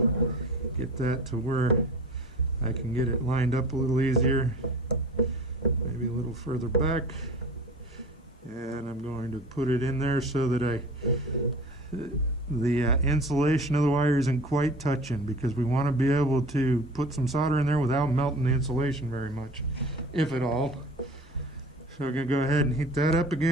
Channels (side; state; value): both; normal; correlation 0.41